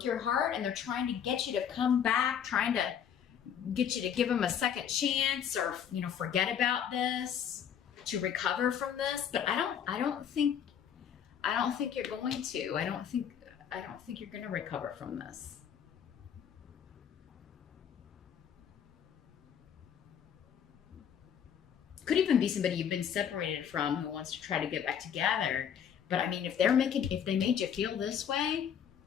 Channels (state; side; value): quieter; right; 8.5 dB